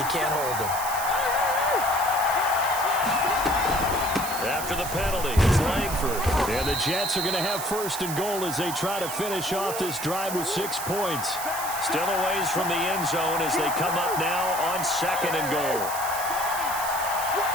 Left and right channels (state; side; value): noise; right; hiss, 7 dB below the sound